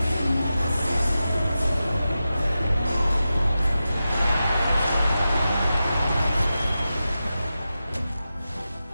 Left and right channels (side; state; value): both; inverted; correlation -0.92